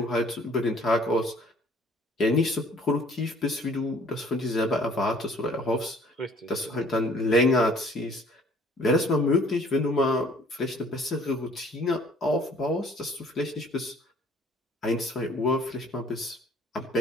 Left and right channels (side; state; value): both; normal; correlation 0.55